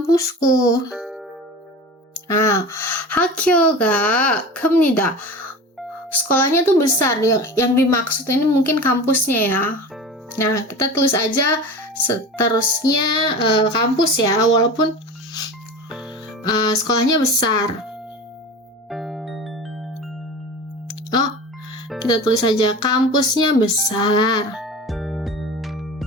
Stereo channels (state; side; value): normal; both; correlation 0.33